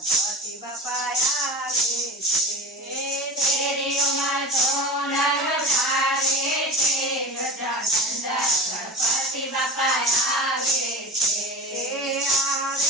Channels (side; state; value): both; normal; correlation 0.31